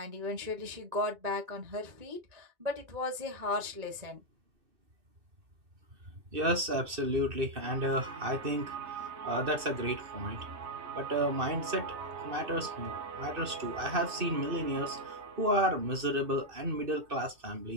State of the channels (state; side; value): late; left; 2.6 ms